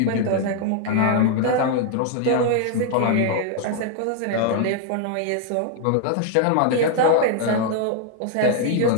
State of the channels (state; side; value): different; both; correlation 0.00